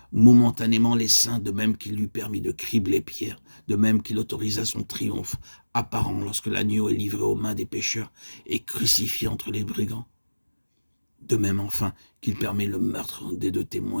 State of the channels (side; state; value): both; inverted; correlation -1.00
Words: momentanément les saints, de même qu'il lui permit de cribler Pierre, de même qu'il autorisa son triomphe apparent lorsque l'agneau est livré aux mains des pécheurs et crucifié entre les brigands. De même enfin qu'il permet le meurtre des 2